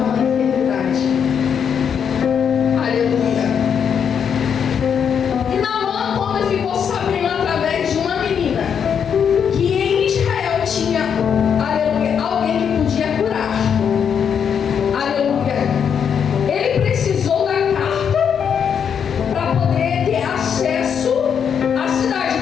enfermidade. Aleluia. E Naamã, quando ficou sabendo através de uma menina que em Israel tinha, aleluia, alguém que podia curar, aleluia, ele precisou da carta para poder ter acesso à cidade.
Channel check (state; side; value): quieter; right; 7.6 dB